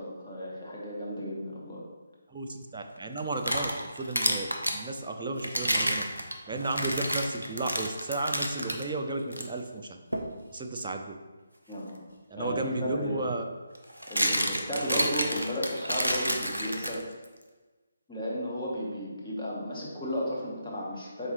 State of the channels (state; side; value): inverted; both; correlation -0.78